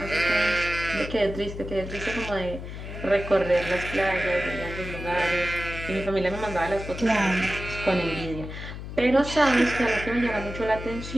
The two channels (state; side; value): noise; left; hum, 9 dB below the sound